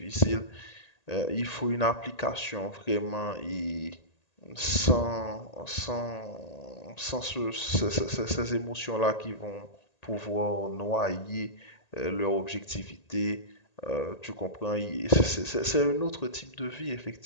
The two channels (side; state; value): right; late; 1.8 ms